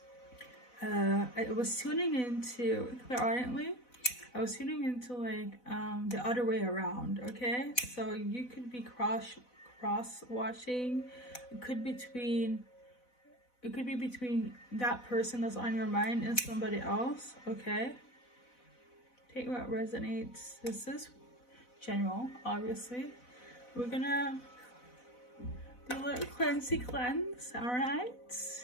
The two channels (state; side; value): late; right; 4.0 ms